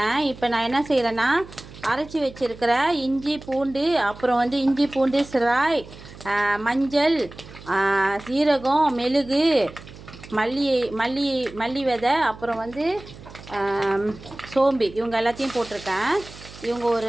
இப்போ நான் என்ன செய்கிறேன்னா அரைச்சி வச்சுருக்கிற இஞ்சி பூண்டு, அப்புறம் இஞ்சி பூண்டு சிராய், மஞ்சள், சீரகம், மெழுகு, மல்லி விதை, அப்புறம் சோம்பு, இவங்க எல்லாத்தையும் போட்டிருக்கேன். இவங்க ஒரு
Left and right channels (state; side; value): noise; right; hum, 18 dB below the sound